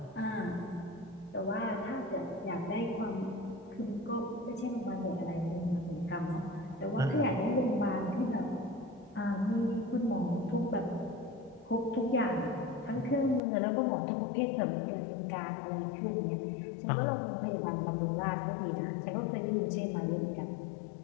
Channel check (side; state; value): right; drops out; at 13.4 s